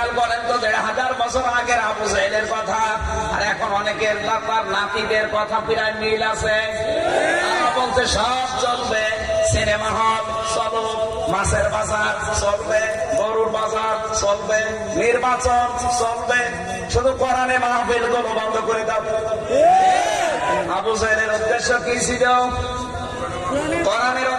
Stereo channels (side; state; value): both; identical; correlation 1.00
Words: করেন তো, 1500 বছর আগের আবু জেহেলের কথা আর এখন অনেকের তার নাতিদের কথা প্রায় মিল আছে। তারা বলছে সব চলবে, সিনেমা হল চলুক, মাছের বাজার চলবে, গরুর বাজার চলবে, নির্বাচন চলবে, শুধু কোরআনে মাহফিল গুলো বন্ধ করে দাও। আবু জাহেলের উদ্দেশ্য কি ছিল? কোরআনের